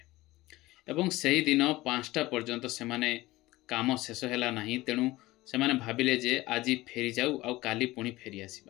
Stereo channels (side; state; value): right; quieter; 18.7 dB